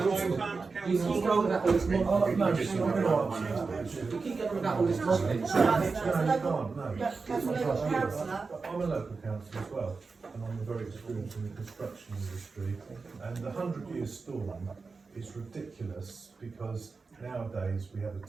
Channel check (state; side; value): quieter; left; 4.4 dB